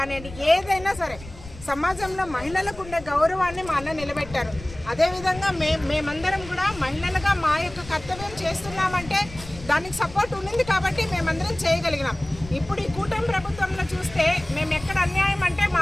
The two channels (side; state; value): left; noise; rumble, 16 dB below the sound